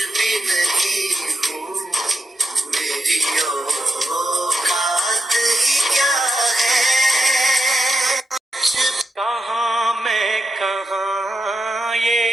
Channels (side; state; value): both; normal; correlation 0.86